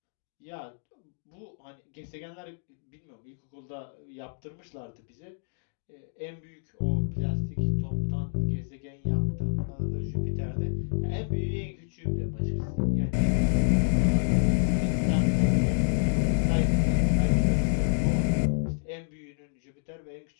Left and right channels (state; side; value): silent; right; digital silence